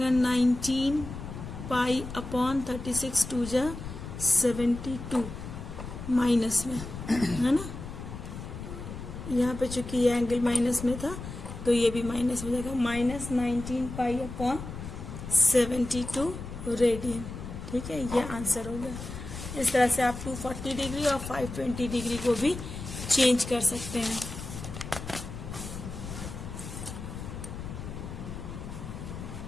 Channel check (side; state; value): left; noise; rumble, 9 dB below the sound